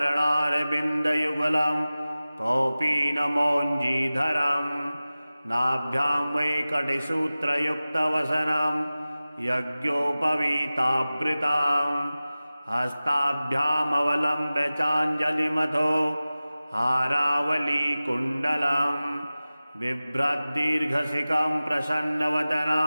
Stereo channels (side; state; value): both; inverted; correlation -0.97